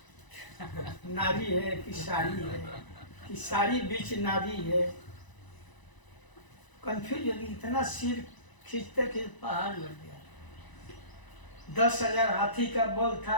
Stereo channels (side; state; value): right; late; 1.0 ms